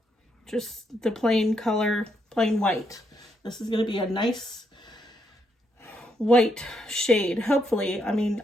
just the plain color, plain white. This is going to be a nice white shade, hopefully. I mean,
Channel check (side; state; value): both; normal; correlation 0.77